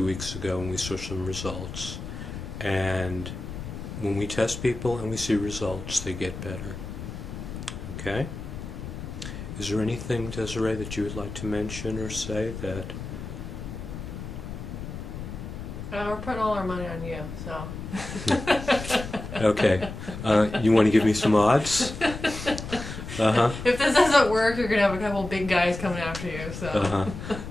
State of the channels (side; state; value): left; noise; rumble, 9 dB below the sound